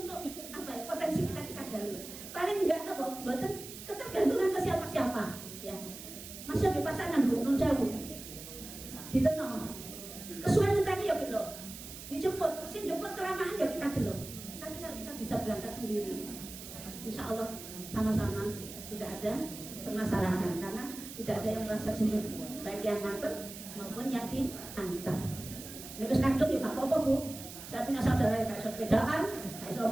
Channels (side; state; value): right; noise; hiss, 12 dB below the sound